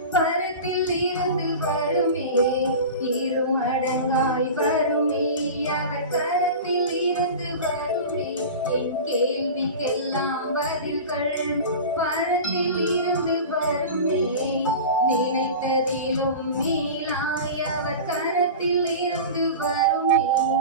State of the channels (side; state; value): both; inverted; correlation -0.31